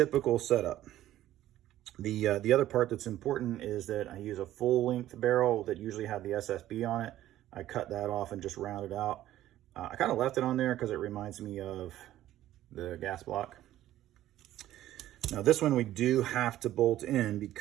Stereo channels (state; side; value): quieter; left; 13.6 dB